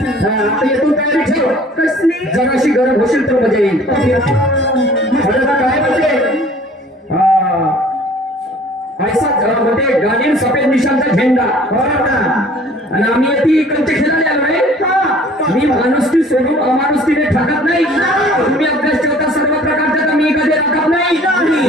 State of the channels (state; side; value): normal; both; correlation 0.51